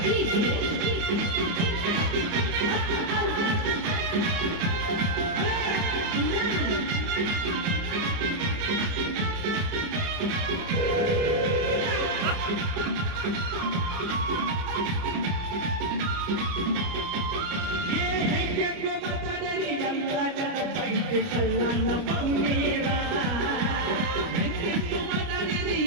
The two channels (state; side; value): late; left; 29 ms